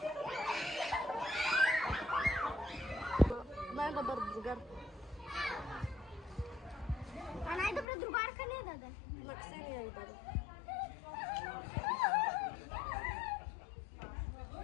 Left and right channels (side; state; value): right; drops out; at 7.9 s